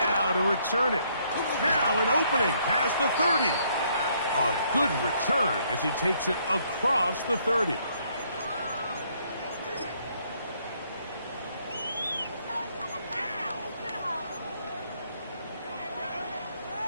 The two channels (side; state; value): both; inverted; correlation -0.69